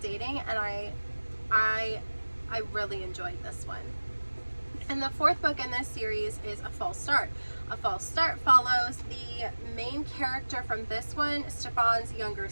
dating, and I really enjoyed this one. And the 4th book in this series is A False Start. A False Start follows the main character from this one, Stefan's younger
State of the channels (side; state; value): both; inverted; correlation -1.00